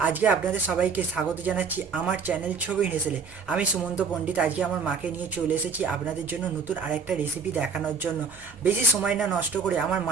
আজকে আপনাদের সবাইকে স্বাগত জানাচ্ছি আমার চ্যানেল ছবির হেসেলে। আমি সুমন্ত পণ্ডিত আজকে আমার মাকে নিয়ে চলে এসেছি আপনাদের জন্য নতুন আরেকটা রেসিপি দেখানোর জন্য। বেশি সময় না নষ্ট করে আমার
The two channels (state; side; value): quieter; left; 5.3 dB